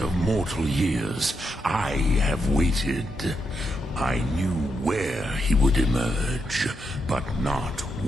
mortal years, I have waited. I knew where he would emerge, but not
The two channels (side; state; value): both; normal; correlation 0.82